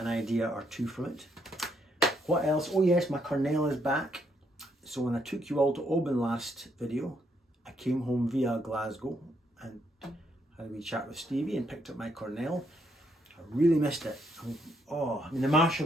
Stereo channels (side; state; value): both; normal; correlation 0.74